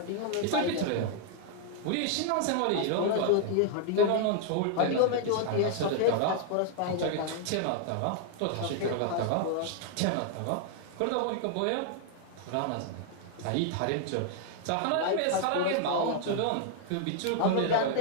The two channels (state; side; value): different; both; correlation 0.00